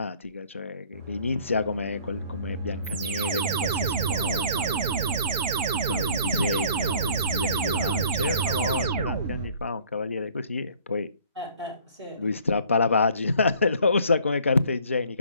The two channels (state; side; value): inverted; both; correlation -0.54